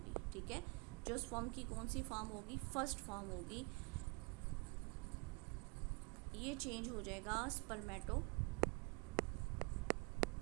ठीक है, जो स्पर्म की कौन सी फॉर्म होगी, फर्स्ट फॉर्म होगी, ये चेंज हो जाएगा स्पर्मेटिड्स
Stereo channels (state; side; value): quieter; left; 30.4 dB